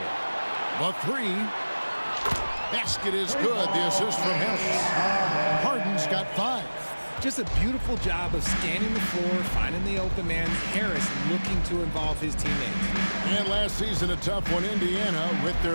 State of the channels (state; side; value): inverted; both; correlation -1.00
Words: The 3. Basket is good. The assist from Harris. Harden's got 5. Just a beautiful job of scanning the floor, finding the open man. Harris looking to involve his teammates. And last season, a tough one. Indiana with